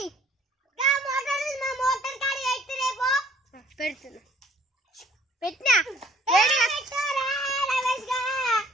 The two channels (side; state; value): both; normal; correlation 0.58